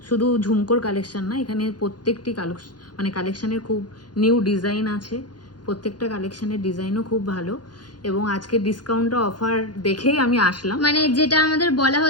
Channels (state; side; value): late; right; 0.70 ms